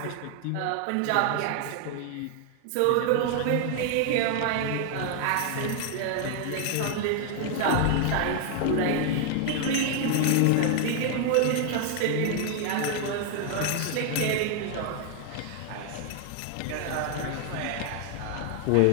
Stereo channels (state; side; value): different; both; correlation 0.00